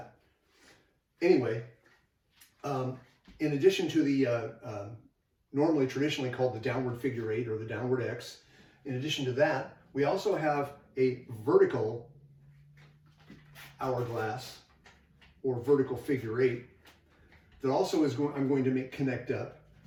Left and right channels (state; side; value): identical; both; correlation 1.00